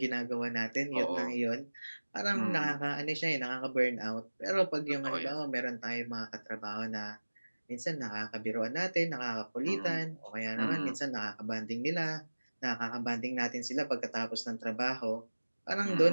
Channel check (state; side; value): inverted; both; correlation -1.00